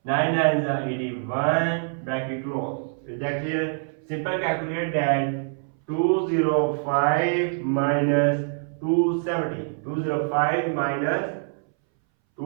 9 nines are 81 bracket close. Is that clear? Simple calculate that 205 minus 270. 205 minus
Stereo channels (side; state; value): left; silent; 62 dB below the other